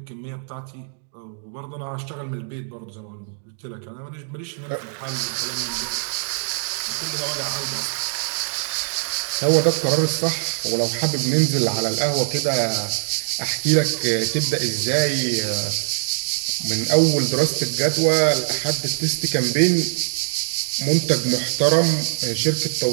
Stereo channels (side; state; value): left; silent; digital silence